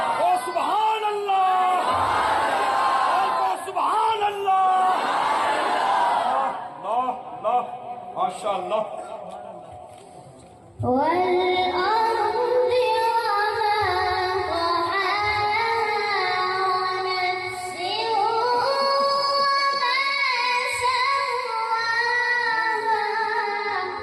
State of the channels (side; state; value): both; identical; correlation 1.00